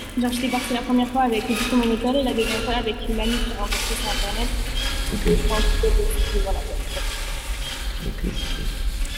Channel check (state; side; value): identical; both; correlation 1.00